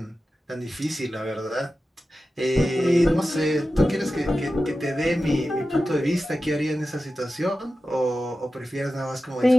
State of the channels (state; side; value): normal; both; correlation 0.93